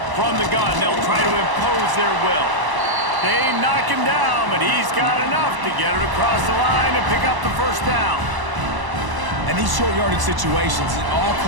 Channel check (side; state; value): left; late; 1.0 ms